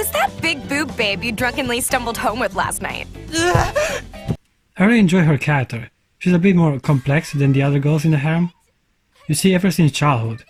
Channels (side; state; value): both; identical; correlation 1.00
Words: that big boob babe you drunkenly stumbled home with last night? I really enjoy her character. She's a bit more complex than the other girls in the harem. You see, ever since childhood,